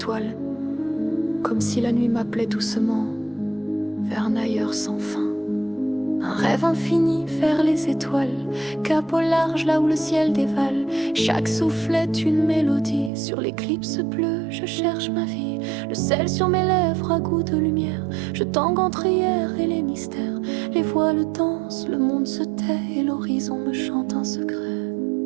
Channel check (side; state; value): left; drops out; at 13.1 s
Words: comme si la nuit m'appelait doucement vers un ailleurs sans fin. Un rêve infini vers les étoiles, cap au large là où le ciel dévale. Chaque souffle est une mélodie, sur l'éclipse bleue je cherche ma vie. Le sel sur mes lèvres à goût de lumière, je tangue entre hier et les mystères. Les voiles dansent, le monde se tait et l'horizon me chante un secret.